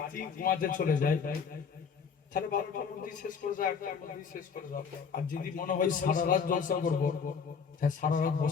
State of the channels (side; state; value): right; quieter; 6.2 dB